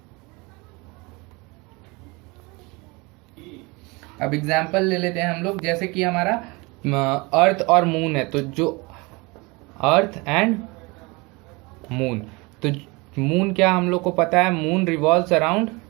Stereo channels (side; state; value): left; quieter; 26.0 dB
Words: अब एग्जाम्पल ले लेते हैं हम लोग, जैसे कि हमारा अर्थ और मून है, तो जो अर्थ एंड मून, तो मून क्या हम लोग को पता है, moon revolves around